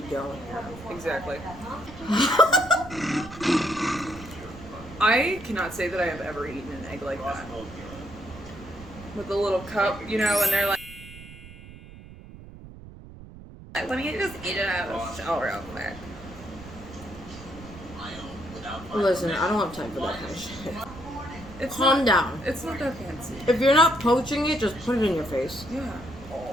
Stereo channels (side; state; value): right; noise; rumble, 16 dB below the sound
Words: don't. Exactly. I cannot say that I have ever eaten an egg like that. With a little cup, you know, and they're like, let me just eat it out of the shell real quick. Listen, I don't have time for that kind of shit. Calm down. It's not that fancy. If you're not poaching it, just put it in your face. Yeah.